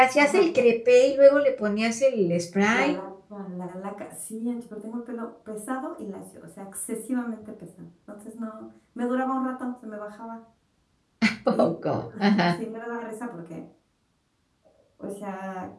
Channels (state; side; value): identical; both; correlation 1.00